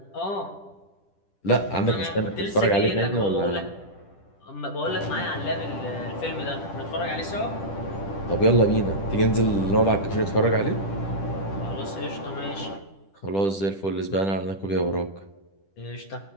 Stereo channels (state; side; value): late; right; 10 ms